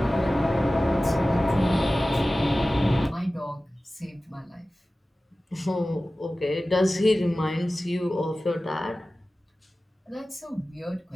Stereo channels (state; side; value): normal; both; correlation 0.96